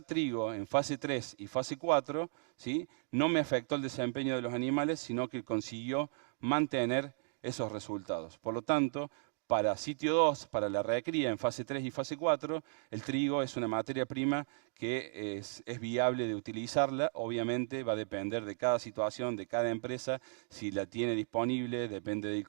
trigo en fase 3 y fase 4, ¿sí?, no me afectó el desempeño de los animales, sino que consiguió mantener esos resultados. Por lo tanto, para sitio 2, para la recría en fase 3 y fase 4, el trigo es una materia prima que es viable de utilizarla. Obviamente va a depender de cada situación, de cada empresa, si la tiene disponible, depende del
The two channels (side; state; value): left; silent; digital silence